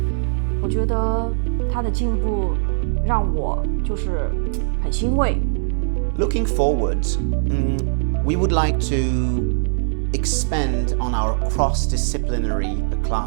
我觉得他的进步让我就是很欣慰。Looking forward, we would like to expand on our cross-disciplinary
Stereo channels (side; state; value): left; silent; digital silence